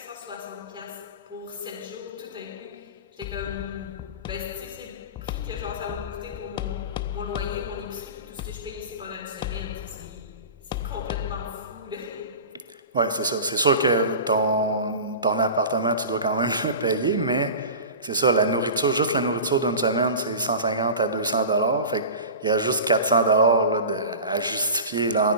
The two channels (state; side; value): inverted; both; correlation -0.33